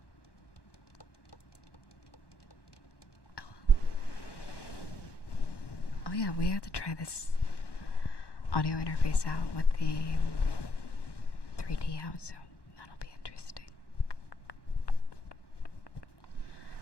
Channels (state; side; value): late; right; 1.1 ms